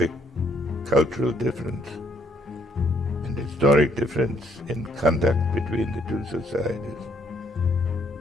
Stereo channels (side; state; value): both; normal; correlation 0.68